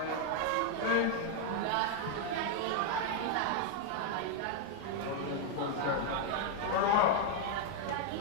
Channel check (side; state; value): both; different; correlation 0.00